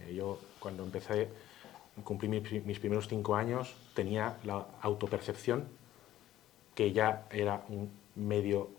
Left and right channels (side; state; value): right; quieter; 13.5 dB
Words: Yo cuando cumplí mis primeros 5 años, tenía la autopercepción que ya era un medio